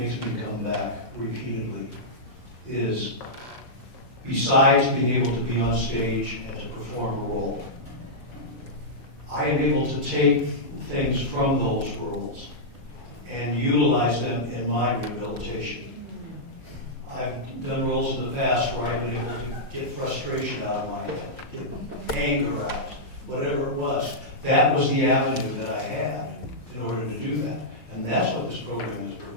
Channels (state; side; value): late; right; 5.7 ms